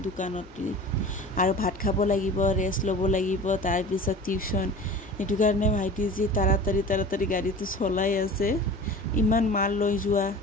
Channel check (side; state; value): left; noise; hum, 22 dB below the sound